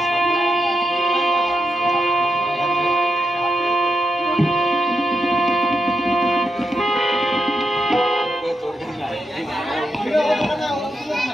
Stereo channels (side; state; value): both; normal; correlation 0.84